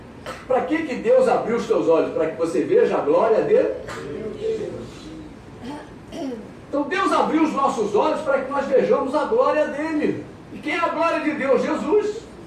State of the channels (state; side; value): identical; both; correlation 1.00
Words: Para que Deus abriu os teus olhos? Para que você veja a glória dele? Então Deus abriu os nossos olhos para que nós vejamos a glória dele. E quem é a glória de Deus? Jesus.